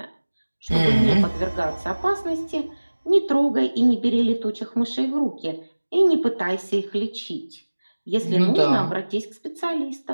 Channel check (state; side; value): inverted; both; correlation -1.00